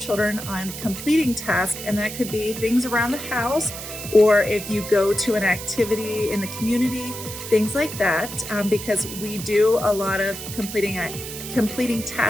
on completing tasks, and that could be things around the house, or if you go to an activity in the community, things like that, because we do a lot of completing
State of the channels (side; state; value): right; noise; hiss, 9 dB below the sound